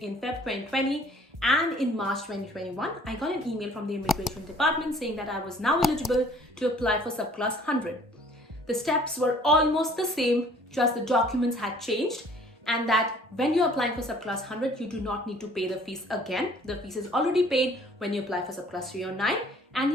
Feb 2020. And in March 2021, I got an email from the immigration department saying that I was now eligible to apply for subclass 100. The steps were almost the same, just the documents had changed, and that when you're applying for subclass 100, you do not need to pay the fees again. The fees is already paid when you apply for subclass 309,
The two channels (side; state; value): both; normal; correlation 0.55